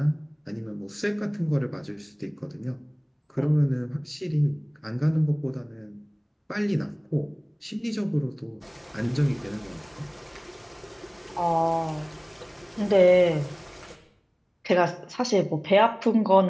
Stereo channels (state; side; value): identical; both; correlation 1.00